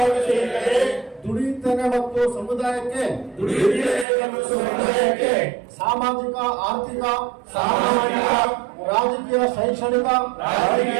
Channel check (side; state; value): left; drops out; at 4.0 s